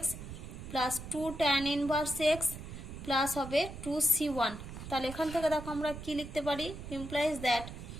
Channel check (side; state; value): right; noise; rumble, 10 dB below the sound